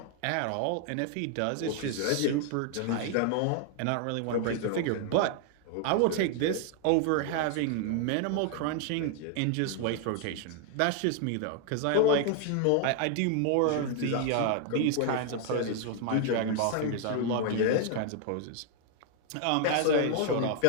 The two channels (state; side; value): different; both; correlation 0.00